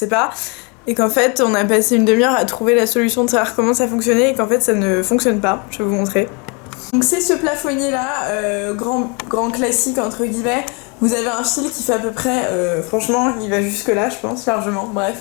pas. Et qu'en fait, on a passé une demi-heure à trouver la solution de savoir comment ça fonctionnait et qu'en fait, ça ne fonctionne pas. Je vais vous montrer. Donc c'est ce plafonnier là, grand classique entre guillemets. Vous avez un fil qui fait à peu près, franchement, il va jusque là, je pense, largement. Bref.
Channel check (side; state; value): right; quieter; 32.5 dB